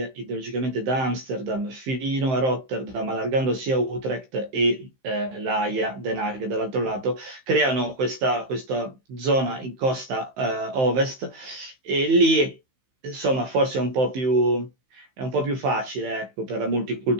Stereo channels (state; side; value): late; left; 15 ms